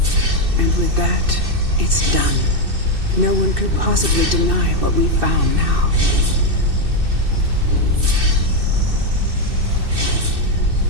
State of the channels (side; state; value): left; late; 2.6 ms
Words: And with that, it's done. No one could possibly deny what we found now.